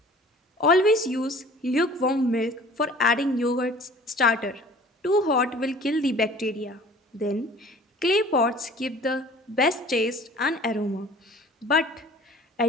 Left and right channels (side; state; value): both; normal; correlation 0.47